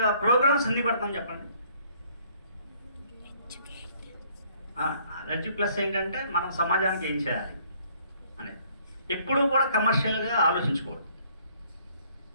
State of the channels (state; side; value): inverted; both; correlation -0.62